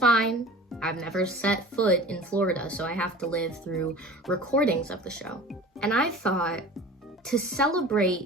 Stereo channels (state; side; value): normal; both; correlation 0.39